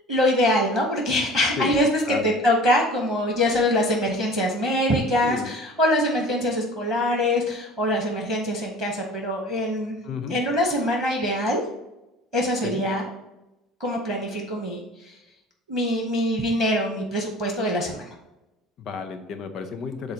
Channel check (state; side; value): normal; both; correlation 0.43